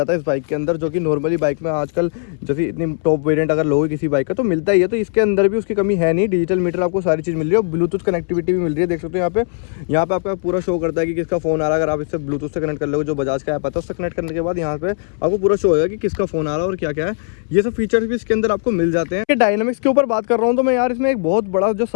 है इस बाइक के अंदर, जो कि नॉर्मली बाइक में आजकल जैसे इतनी टॉप वेरिएंट अगर लोगे किसी बाइक का तो मिलता ही है। तो इसके अंदर भी उसकी कमी है नहीं, डिजिटल मीटर आपको सारी चीज़ मिल रही है। ब्लूटूथ कनेक्टिविटी भी मिल रही है, देख सकते हो यहाँ पे आपका पूरा शो करता है कि किसका फ़ोन आ रहा है। अगर आप इससे ब्लूटूथ से कनेक्ट कर लोगे, जो बजाज का ऐप आता है उससे कनेक्ट करने के बाद यहाँ पे आपको पूरा शो होगा कि किसका फ़ोन आ रहा है और क्या क्या है। ये सब फीचर्स भी इसके अंदर आपको मिल जाते हैं। डायनामिक्स के ऊपर बात कर रहा हूँ तो मैं यार इसमें एक बहुत बड़ा जो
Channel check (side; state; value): right; silent; 67 dB below the other